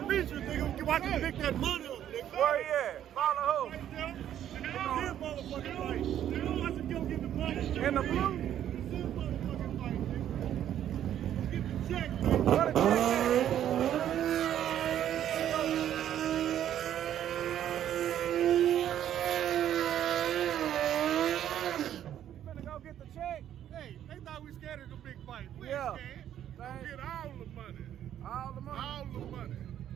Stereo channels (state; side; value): quieter; left; 10.8 dB